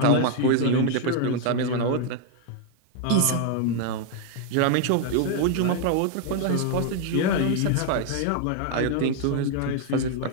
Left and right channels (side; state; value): both; different; correlation 0.00